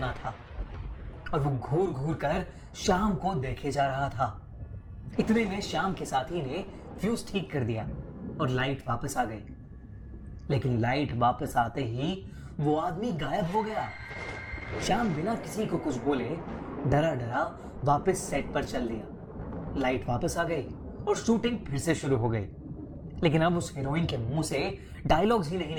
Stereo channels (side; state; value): both; identical; correlation 1.00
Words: था और वो घूर घूर कर श्याम को देखे जा रहा था। इतने में श्याम के साथी ने फ्यूज ठीक कर दिया और लाइट वापस आ गई, लेकिन लाइट वापस आते ही वो आदमी गायब हो गया। श्याम बिना किसी को कुछ बोले डरा डरा वापस सेट पर चल दिया। लाइट वापस आ गई और शूटिंग फिर से शुरू हो गई, लेकिन अब उस हीरोइन के मुंह से डायलॉग्स ही नहीं